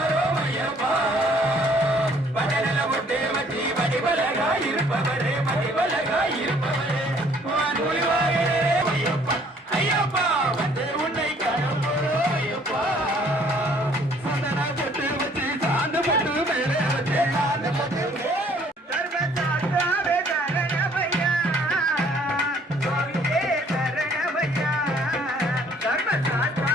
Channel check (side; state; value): both; normal; correlation 0.60